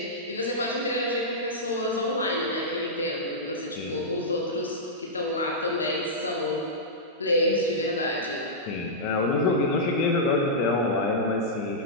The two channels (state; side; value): normal; both; correlation -0.12